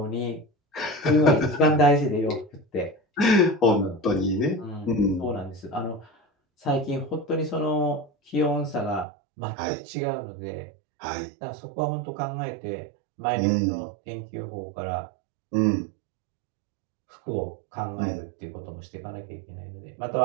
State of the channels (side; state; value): left; drops out; at 9.1 s